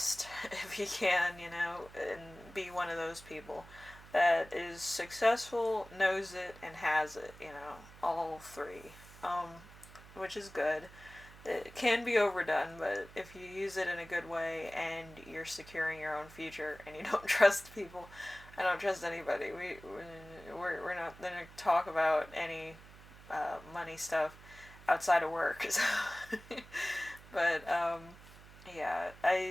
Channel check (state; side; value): noise; right; hum, 19 dB below the sound